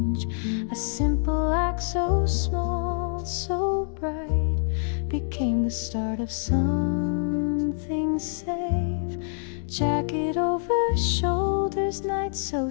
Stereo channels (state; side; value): silent; right; digital silence